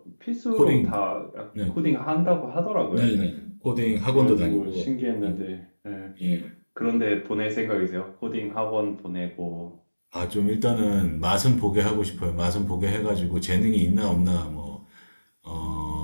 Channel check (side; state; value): both; inverted; correlation -1.00